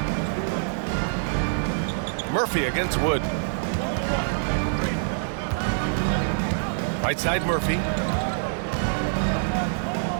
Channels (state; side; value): silent; left; 61 dB below the other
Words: Murphy against Wood. Right side Murphy.